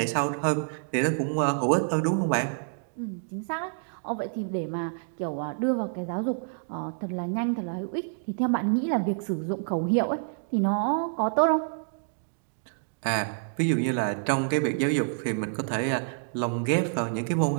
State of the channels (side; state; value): left; silent; digital silence